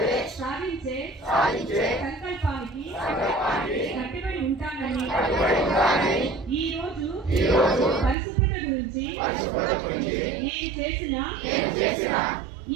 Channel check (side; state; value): left; drops out; at 8.2 s